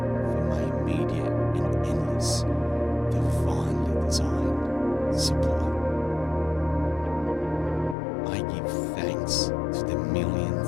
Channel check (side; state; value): right; drops out; at 8.0 s